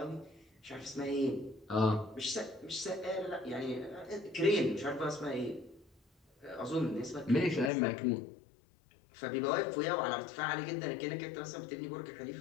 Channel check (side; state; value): right; drops out; at 7.7 s